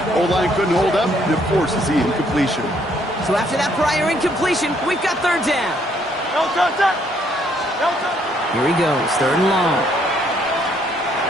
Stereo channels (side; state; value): both; normal; correlation 0.68